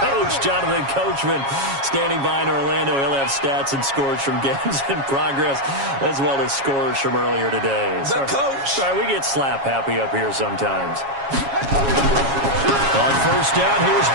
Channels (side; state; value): left; late; 7.3 ms